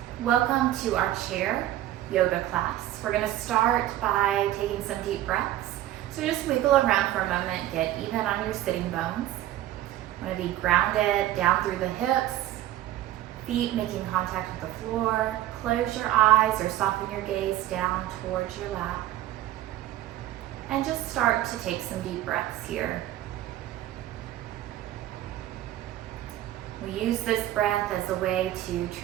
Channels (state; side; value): quieter; left; 13.8 dB